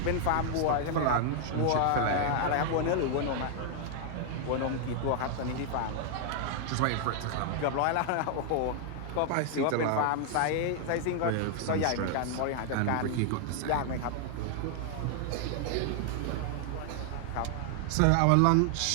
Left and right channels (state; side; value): different; both; correlation 0.00